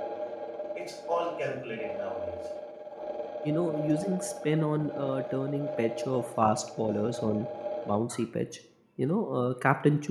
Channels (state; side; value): identical; both; correlation 1.00